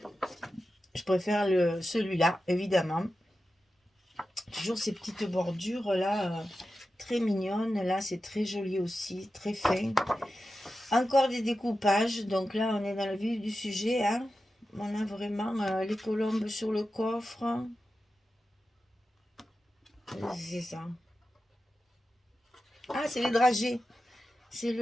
Je préfère celui-là, évidemment. Toujours ces petites bordures-là, très mignonnes. Là, c'est très joli aussi, très fin. Encore des découpages. Donc là, on est dans le vif du sujet, hein. On a vraiment les colombes sur le coffre. C'est ça. Ah, c'est les dragées. C'est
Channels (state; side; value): normal; both; correlation 0.92